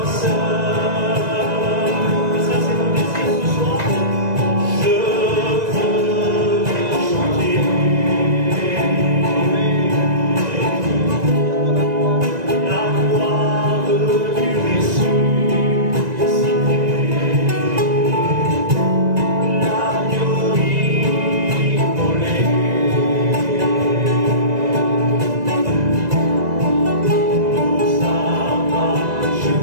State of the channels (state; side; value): late; left; 1.9 ms